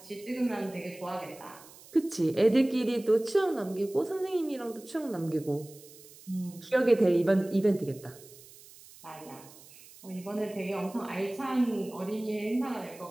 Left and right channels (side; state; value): right; noise; hiss, 21 dB below the sound